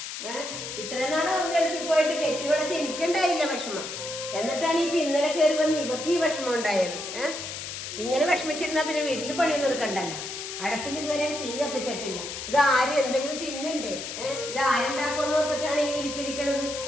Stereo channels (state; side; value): noise; left; hiss, 7 dB below the sound